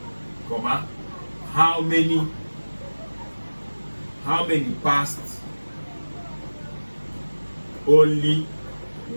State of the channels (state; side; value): inverted; both; correlation -1.00